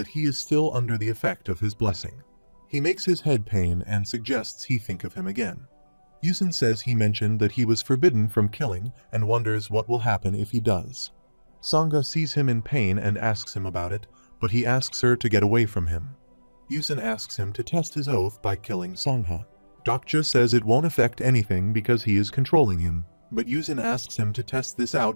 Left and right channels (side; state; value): both; inverted; correlation -1.00